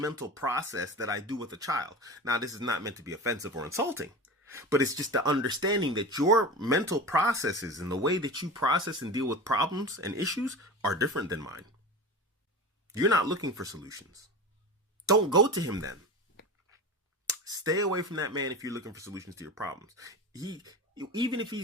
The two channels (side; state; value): both; normal; correlation 0.29